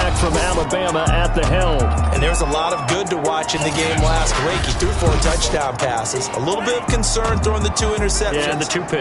from Alabama, at the helm. And there's a lot of good to watch in the game last week. He threw 4 touchdown passes. A little bit of concern throwing the 2 interceptions. Yeah, and the 2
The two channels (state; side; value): identical; both; correlation 1.00